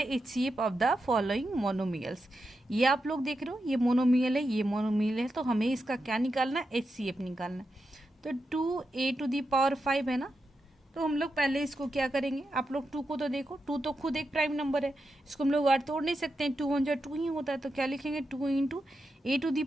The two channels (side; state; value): both; normal; correlation 0.87